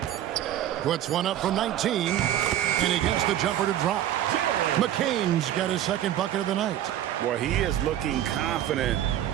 Puts one up from 19, and he gets the jumper to drop. McCain's got his second bucket of the night. Boy, he is looking confident.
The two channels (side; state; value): left; quieter; 11.8 dB